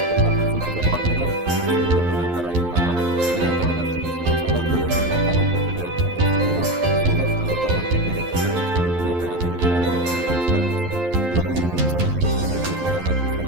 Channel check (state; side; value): late; left; 11 ms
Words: փոխհատուցում է տրամադրվել 89 բնակարանի համար։ Բնակարանաշինությունը ծավալվել է հիմնականում հետևյալ ուղղություններով՝ զոհված ազատամարտիկների ընտանիքների բնակարանների վերանորոգում եւ կառուցում, ԼՂՀ-ում ծնելիության եւ